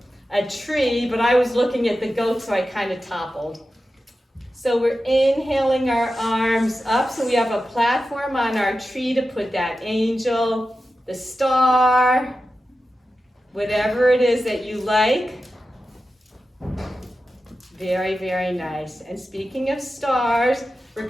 a tree, but I was looking at the goat, so I kind of toppled. So we're inhaling our arms up, so we have a platform on our tree to put that angel, the star, whatever it is that you like. Very, very nice. And speaking of stars, we're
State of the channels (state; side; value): normal; both; correlation 0.92